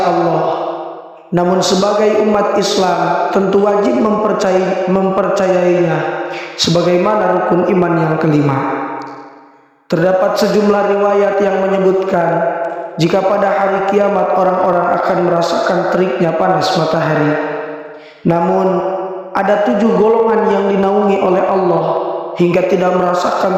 Allah, namun sebagai umat Islam tentu wajib mempercayainya sebagaimana rukun iman yang kelima. Terdapat sejumlah riwayat yang menyebutkan jika pada hari kiamat orang-orang akan merasakan teriknya panas matahari. Namun ada 7 golongan yang dinaungi oleh Allah hingga tidak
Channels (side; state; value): both; identical; correlation 1.00